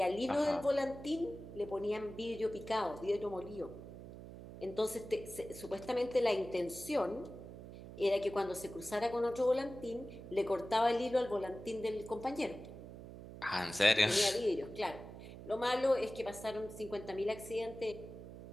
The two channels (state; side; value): noise; right; hum, 13 dB below the sound